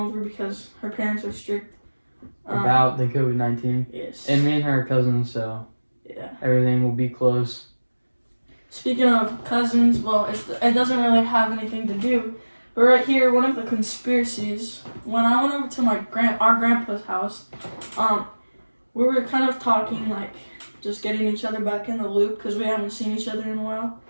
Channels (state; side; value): inverted; both; correlation -1.00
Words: because her parents are strict. About the COVID-19. Yes. And me and her are cousins, so yeah, everything will be close. Speaking of cousins, well, it doesn't really have anything to do. But right here, one of the conspiracies, when I went over to our grandpa's house, we were kind of talking, like, just getting each other back in the loop because we haven't seen each other in a while.